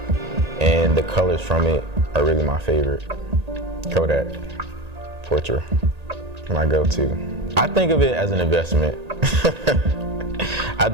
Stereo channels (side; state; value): left; late; 1.8 ms